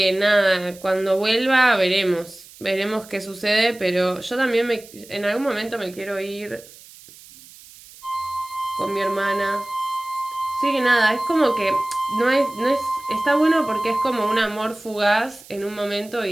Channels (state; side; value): noise; right; hiss, 21 dB below the sound